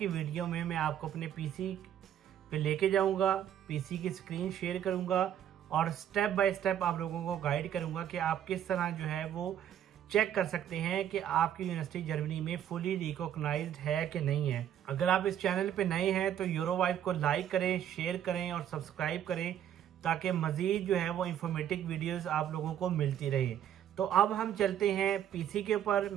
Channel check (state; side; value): quieter; left; 10.3 dB